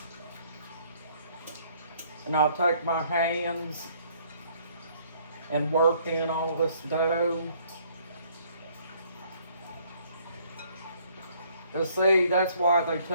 And I'll take my hands and work in all this dough. And see, that's why they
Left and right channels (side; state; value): both; inverted; correlation -0.63